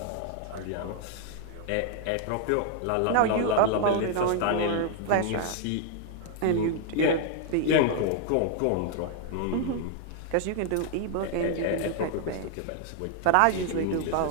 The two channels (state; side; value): different; both; correlation 0.00